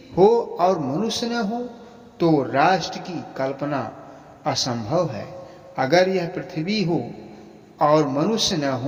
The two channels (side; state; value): both; identical; correlation 1.00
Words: हो और मनुष्य न हो तो राष्ट्र की कल्पना असंभव है। अगर यह पृथ्वी हो और मनुष्य न